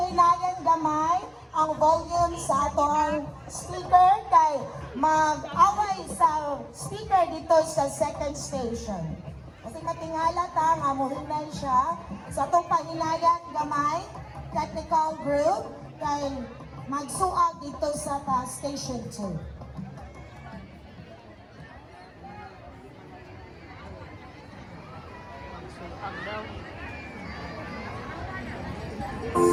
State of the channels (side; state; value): both; identical; correlation 1.00